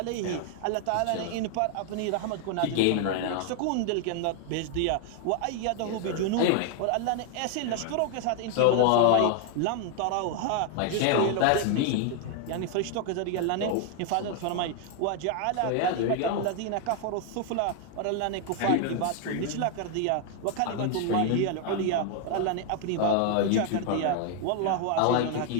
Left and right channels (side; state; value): both; different; correlation 0.00